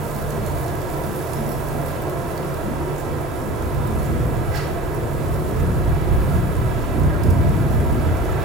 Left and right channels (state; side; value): normal; both; correlation 0.39